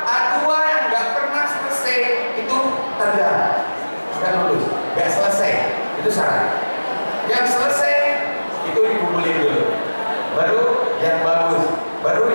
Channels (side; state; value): both; inverted; correlation -1.00